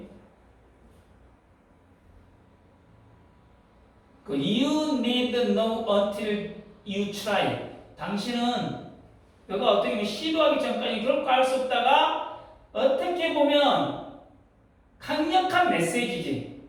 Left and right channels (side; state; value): both; identical; correlation 1.00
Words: 그 you need know until you try. 당신은 너가 어떻게 보면 시도하기 전까지 결코 알 수 없다가 어떻게 보면 강력한 메시지지.